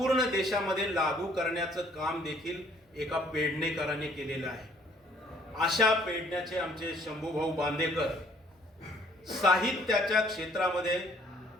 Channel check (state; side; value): normal; both; correlation 0.60